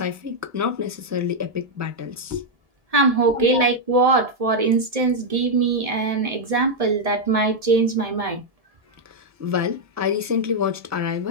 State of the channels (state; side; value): late; left; 1.7 ms